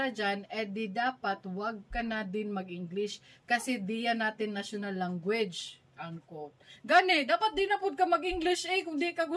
dyan, di dapat wag ka na din mag-English kasi di yan natin national language. Unquote. Gani, dapat di na po ka mag-English kung di ka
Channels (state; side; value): identical; both; correlation 1.00